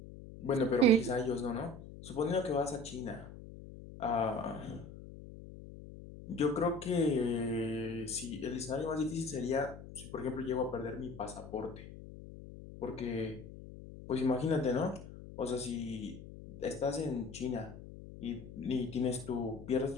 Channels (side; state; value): left; noise; hum, 14 dB below the sound